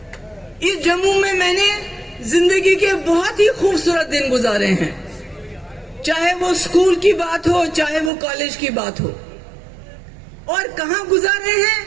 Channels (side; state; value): left; drops out; at 8.1 s